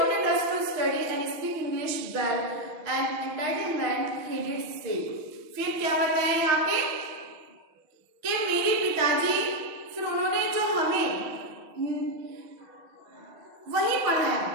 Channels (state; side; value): late; left; 6.5 ms